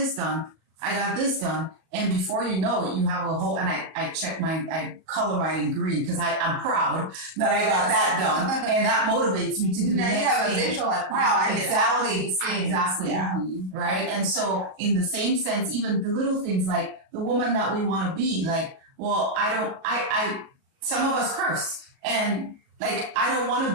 done. And before you know it, you have a whole, and I color mine in green because I'm proud that I got that done. And that motivates me to do the Now next you have a thing. visual like, wow, I did all these things. Exactly. Yeah. Right. And so in the same sense, even the little things like the woman that we want to be, like, well, some of us curse and like, I don't want to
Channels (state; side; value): late; left; 37 ms